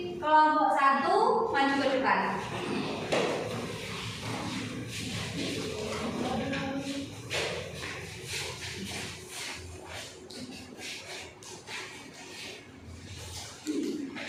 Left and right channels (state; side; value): identical; both; correlation 1.00